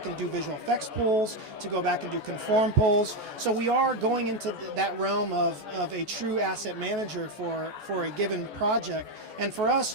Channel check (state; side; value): late; left; 14 ms